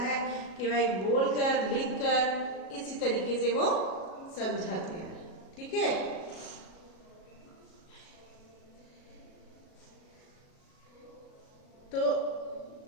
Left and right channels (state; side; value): late; right; 37 ms